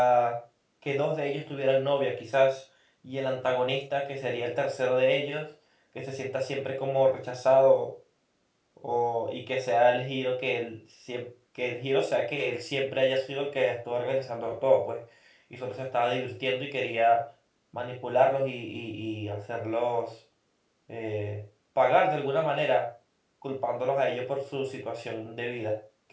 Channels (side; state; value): both; identical; correlation 1.00